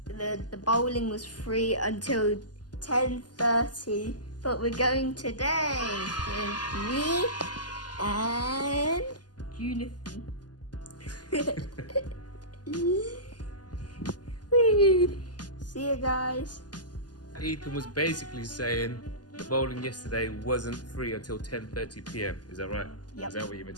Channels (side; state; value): right; late; 0.70 ms